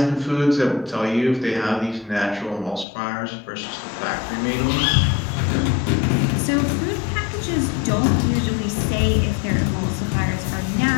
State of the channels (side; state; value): right; drops out; at 2.9 s